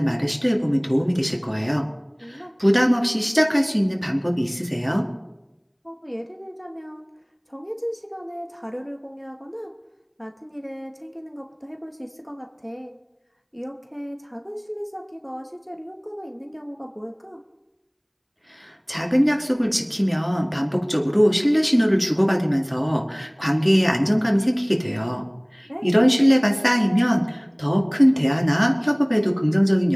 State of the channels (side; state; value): both; identical; correlation 1.00